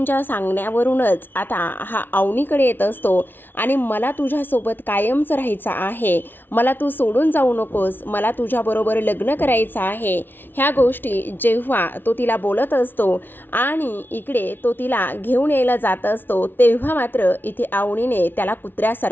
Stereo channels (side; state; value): right; late; 0.097 ms